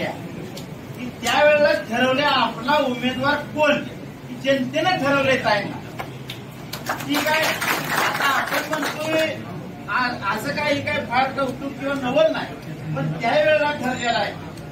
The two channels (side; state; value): both; identical; correlation 1.00